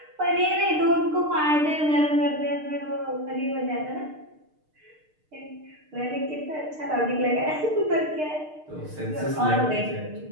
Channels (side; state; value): left; late; 6.6 ms